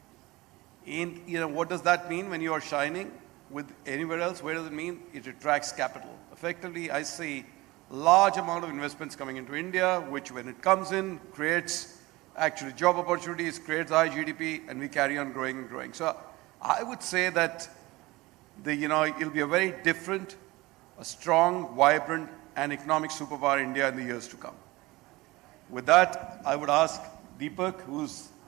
And what does that mean when you are shining with anywhere else? Where does it mean? It attracts capital. Effectively, I see large amount of investments coming into India, which when it comes in, creates actually job opportunities, creates high GDP, and we carry on growing and growing. So I would say that it'll be a very different, a strong, vibrant, and economic superpower India in the years to come. With that, I would ask Deepak, who's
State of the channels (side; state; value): left; quieter; 20.8 dB